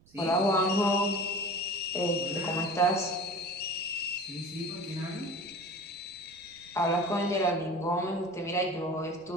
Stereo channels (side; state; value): right; noise; rumble, 28 dB below the sound